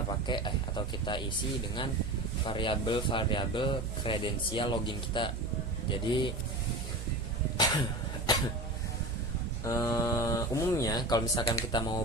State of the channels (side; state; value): right; noise; hum, 8 dB below the sound